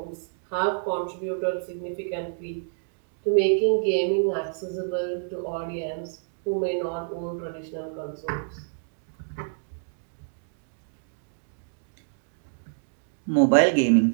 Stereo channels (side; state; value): left; silent; digital silence